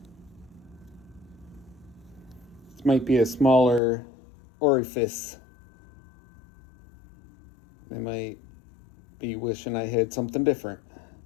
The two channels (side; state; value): right; drops out; at 3.8 s